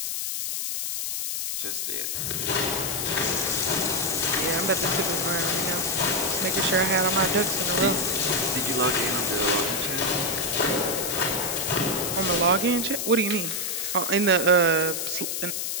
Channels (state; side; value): noise; left; hiss, 2 dB below the sound